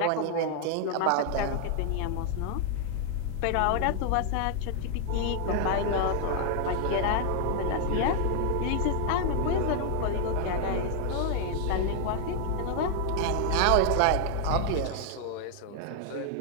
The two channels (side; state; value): both; different; correlation 0.00